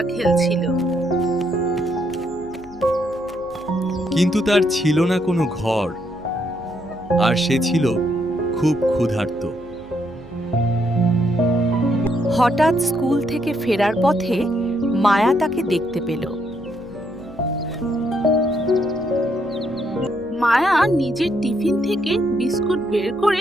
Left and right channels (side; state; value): right; noise; hum, 24 dB below the sound